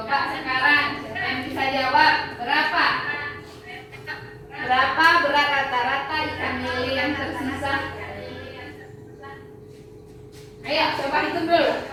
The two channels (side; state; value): both; identical; correlation 1.00